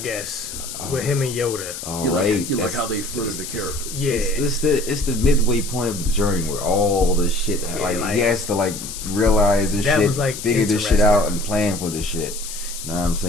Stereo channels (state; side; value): noise; left; hiss, 9 dB below the sound